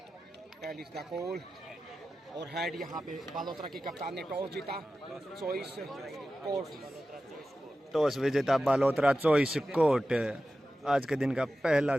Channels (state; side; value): normal; both; correlation 0.94